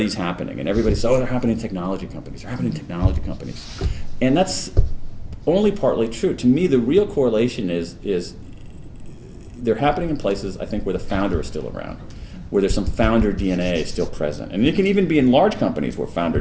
happening, and everybody says, oh, they're happening in technology companies. And that's only partly true. To me, the real correlation is they're happening in places, I think, where the founder is still around, where there's some founder DNA still present. And it can even be in large companies where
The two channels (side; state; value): both; identical; correlation 1.00